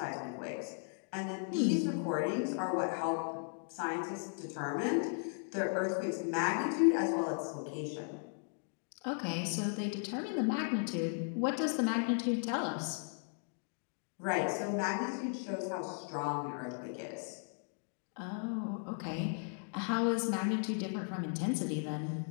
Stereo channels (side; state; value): right; silent; 53 dB below the other